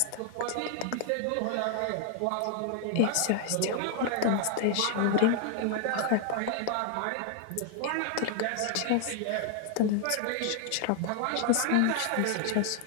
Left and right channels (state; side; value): different; both; correlation 0.00